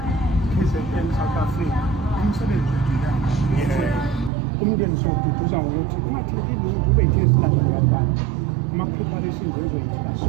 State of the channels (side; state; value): left; drops out; at 4.3 s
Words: KZN South Africa umsebenzi umndeni siwududuza ngokuthi ungatheleki lutho ube yithe esilandela abantwana ama-preparations enzoyithina